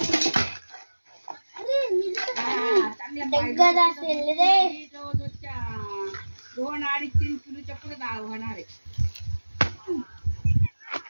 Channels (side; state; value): both; inverted; correlation -1.00